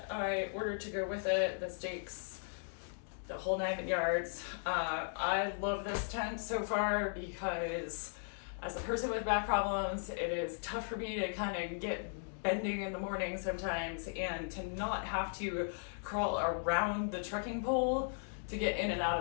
I ordered to go with it, the stakes, the whole 9 yards. I love this tent so far because as a person with back problems, it is tough for me to kind of get bending in the morning sometimes, and to not have to crawl around the trekking pole to get in and out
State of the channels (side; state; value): right; silent; digital silence